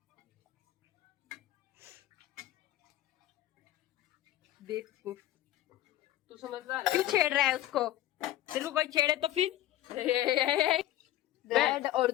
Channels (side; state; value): right; quieter; 14.0 dB